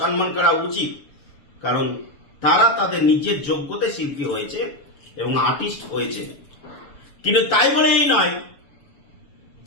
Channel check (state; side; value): late; right; 7.0 ms